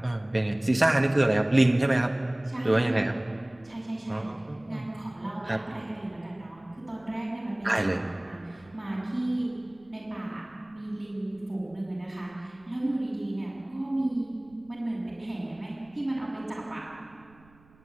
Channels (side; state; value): right; noise; rumble, 28 dB below the sound